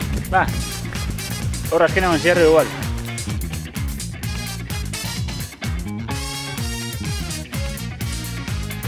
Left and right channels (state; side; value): identical; both; correlation 1.00